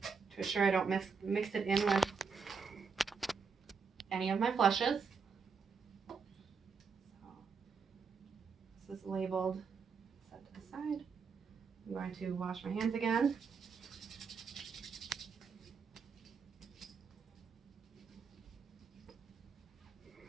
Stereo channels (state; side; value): quieter; left; 5.4 dB